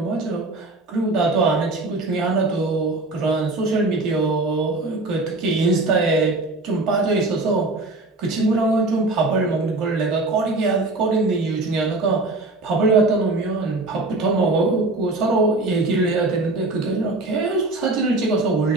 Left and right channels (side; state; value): left; quieter; 3.0 dB